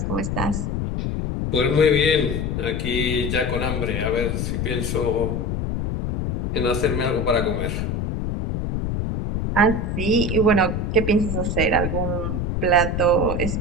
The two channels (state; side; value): noise; left; rumble, 1 dB below the sound